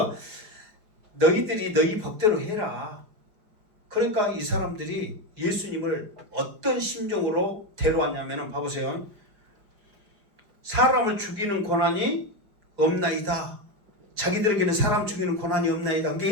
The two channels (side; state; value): left; late; 5.6 ms